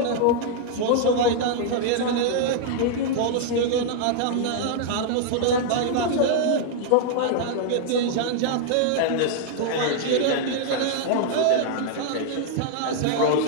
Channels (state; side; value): different; both; correlation 0.00